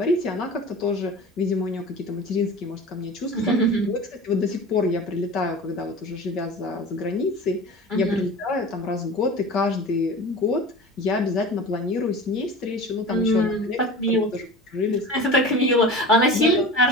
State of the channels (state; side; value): normal; both; correlation 0.35